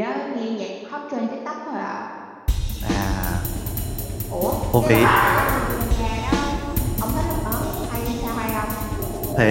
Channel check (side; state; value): both; identical; correlation 1.00